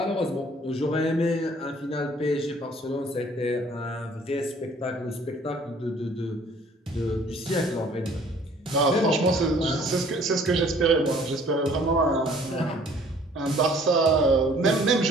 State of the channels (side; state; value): both; normal; correlation 0.56